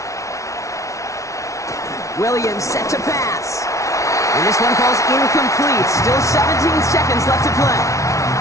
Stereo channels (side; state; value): right; late; 0.15 ms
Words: Williams set to pass. And this one falls incomplete. Still 17 seconds left to play.